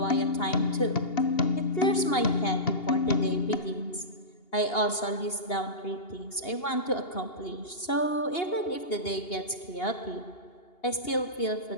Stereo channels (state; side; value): late; right; 2.8 ms